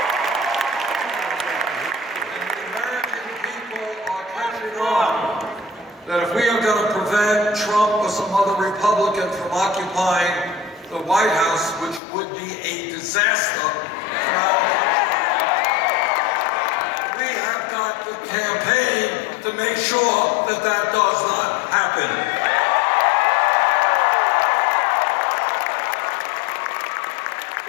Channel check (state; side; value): drops out; right; at 12.0 s